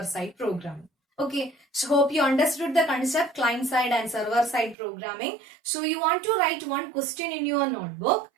side programming. Okay, so hope you understood the concept client side and server side programming. So you want to write one question in your notebook.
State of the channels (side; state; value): left; drops out; at 4.8 s